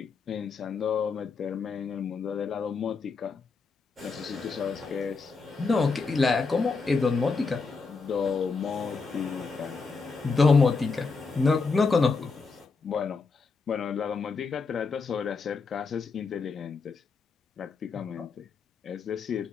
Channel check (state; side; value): quieter; right; 4.5 dB